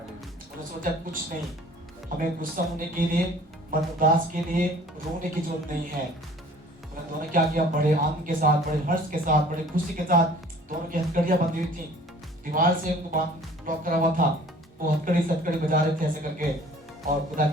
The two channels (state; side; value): normal; both; correlation 0.50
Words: सोचा कुछ नहीं, हमें गुस्सा होने के लिए, मन उदास के लिए रोने की जरूरत नहीं है। उन्होंने क्या किया? बड़े आनंद के साथ, बड़े हर्ष के साथ, बड़े खुशी के साथ दोनों की हथकड़ियां बंधी हुई थी, दीवार से उनको बांध लॉक करा हुआ था। वो हथकड़ी सटकड़ी बजा रहे थे ऐसे करके और खुदा